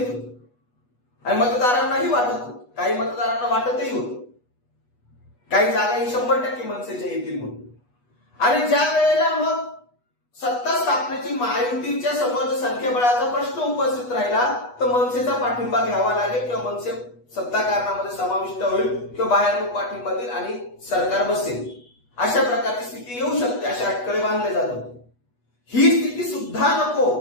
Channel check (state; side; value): late; right; 8.2 ms